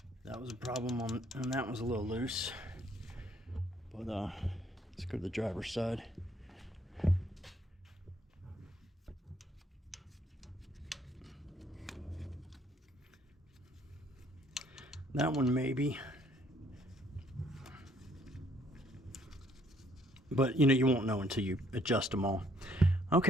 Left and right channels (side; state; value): both; normal; correlation 0.65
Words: that was a problem and that was a little loose. But let's go to the driver's side. That one maybe. But you know, you won't know until you adjust them all.